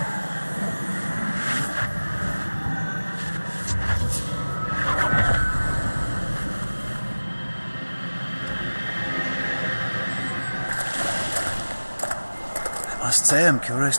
I must say I'm curious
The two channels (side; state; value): both; inverted; correlation -1.00